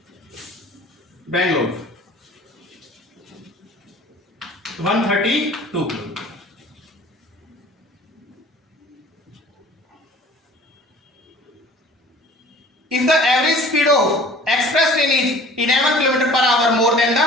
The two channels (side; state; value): both; normal; correlation 0.47